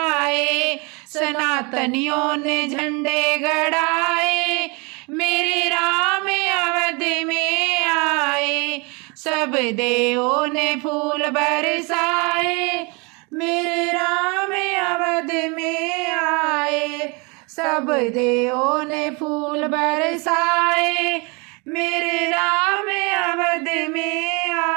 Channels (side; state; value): left; quieter; 30.2 dB